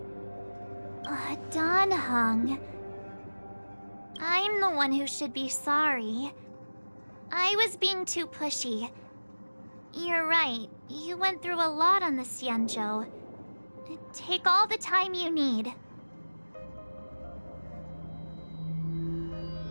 Don Hung. I'm the one who should be sorry. I was being too pushy. You're right. You went through a lot on the Xianzhou. Take all the time you need.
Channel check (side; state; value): both; inverted; correlation -1.00